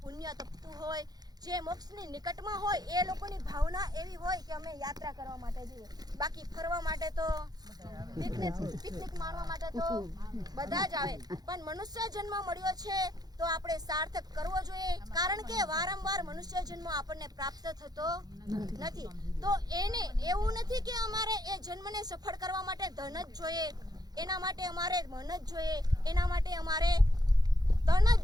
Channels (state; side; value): late; left; 0.19 ms